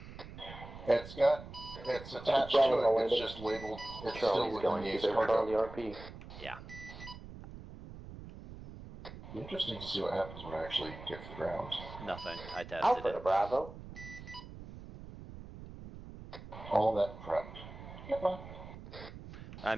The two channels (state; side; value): noise; right; rumble, 13 dB below the sound